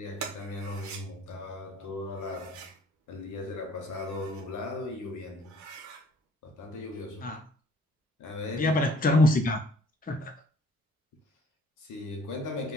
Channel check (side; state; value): both; normal; correlation 0.57